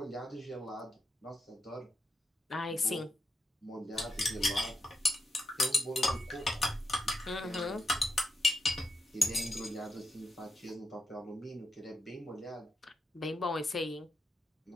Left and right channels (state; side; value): normal; both; correlation 0.84